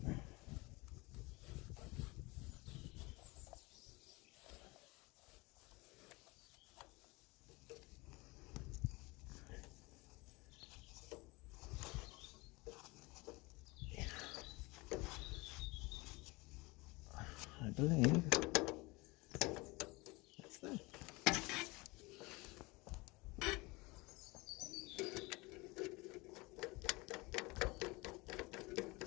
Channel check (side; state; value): right; quieter; 24.3 dB